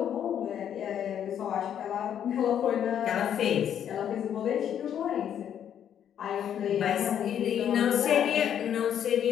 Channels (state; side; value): quieter; right; 9.4 dB